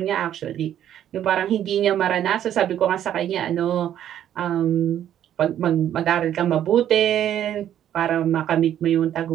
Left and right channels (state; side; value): quieter; left; 10.8 dB